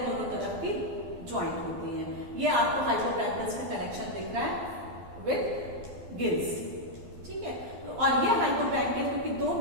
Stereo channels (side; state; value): left; late; 12 ms